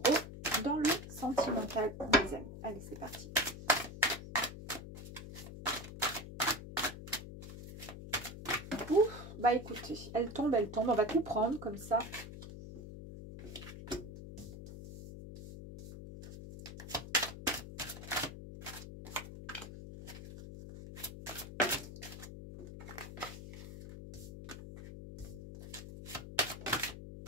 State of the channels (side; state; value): left; noise; hum, 11 dB below the sound